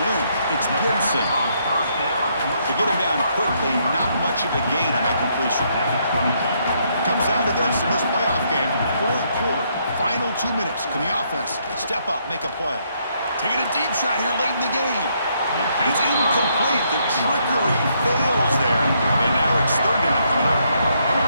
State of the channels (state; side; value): inverted; both; correlation -0.73